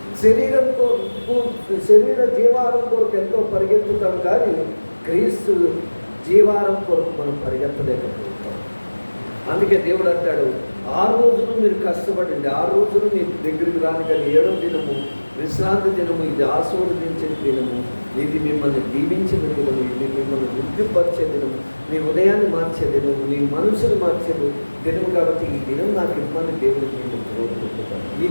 శరీర జీవాహారం కొరకు ఎంతో పరిగెత్తుతాం, కానీ క్రీస్తు జీవారం కొరకు మనం పరిగెత్తలేకపోతాం. అందుకే దేవుడు అంటాడు, 6 రోజులు మీరు కష్టపడండి, 6 రోజులు మీ దగ్గరికి రాని, కానీ 7వ దినము విశ్రాంతి దినము, ఇది ఆశీర్వదించిన దినము, ఇది మిమ్మల్ని దీవించిన దినము, ఇది మిమ్మల్ని వృద్ధిపరిచే దినము, మీ ఉదయాన్ని మార్చే దినము, మీ మనసును మార్చే దినము. కాబట్టి ఈ దినం నాకు ఇమ్మని దేవుడికి నేను కోరుకుంటున్నాను. ఈ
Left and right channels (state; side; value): inverted; both; correlation -1.00